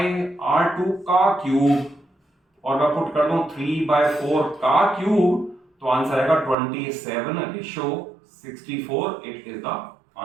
r2 का क्यूब और मैं पुट कर दूं 3/4 का क्यूब, तो आंसर आएगा 27/64। It is the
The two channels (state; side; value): drops out; left; at 6.6 s